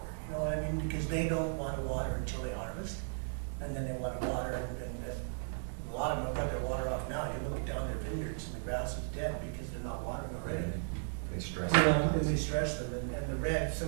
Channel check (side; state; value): left; silent; digital silence